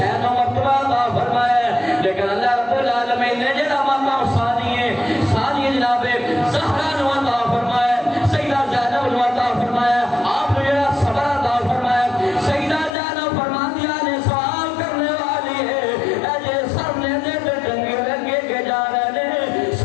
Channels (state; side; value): drops out; right; at 12.9 s